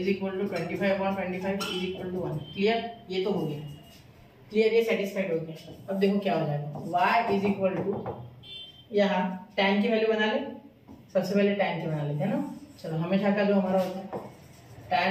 equal to 25/25 is equal to 1। Clear, ये तो हो गया, क्लियर, ये सेटिस्फाइड हो गया। अब देखो क्या हो जाएगा, y इज इक्वल टू, यहाँ tan की वैल्यू बना ले, सबसे पहले tan की बना लेते हैं ना। चलो हमेशा का जो हमारा होता है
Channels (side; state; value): both; identical; correlation 1.00